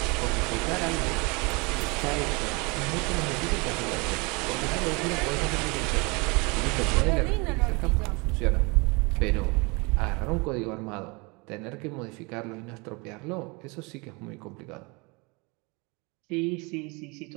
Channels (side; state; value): left; quieter; 28.3 dB